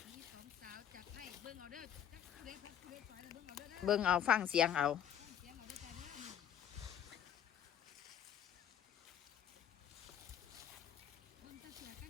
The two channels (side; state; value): right; quieter; 9.2 dB